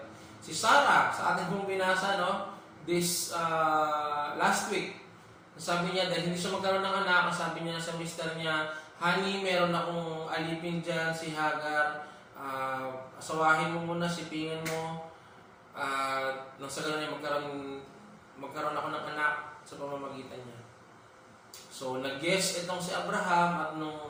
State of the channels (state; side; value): identical; both; correlation 1.00